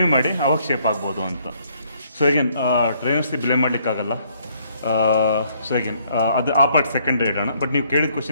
ಮಾಡಿ ಅವಾಗ ಶೇಪ್ ಆಗ್ಬೋದು ಅಂತ. ಸೊ ಅಗೇನ್ ಟ್ರೈನರ್ಸ್ಗೆ ಬ್ಲೇಮ್ ಮಾಡಲಿಕ್ಕಾಗಲ್ಲ. ಸೊ ಅಗೇನ್ ಅದು ಆ ಪಾರ್ಟ್ ಸೆಕೆಂಡ್ರಿ ಇಡೋಣ. ಬಟ್ ನೀವು ಕೇಳಿದ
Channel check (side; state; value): both; inverted; correlation -0.67